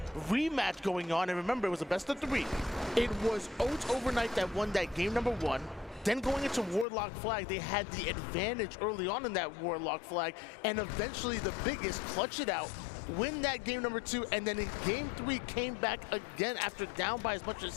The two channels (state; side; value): drops out; right; at 6.9 s